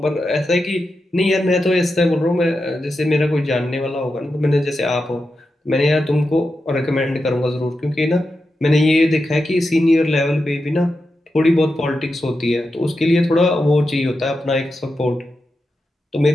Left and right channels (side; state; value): both; normal; correlation 0.89